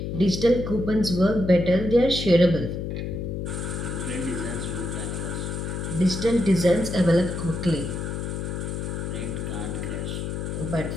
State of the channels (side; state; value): left; noise; hum, 4 dB below the sound